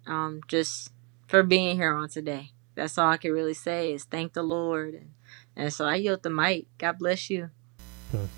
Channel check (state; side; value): quieter; left; 33.3 dB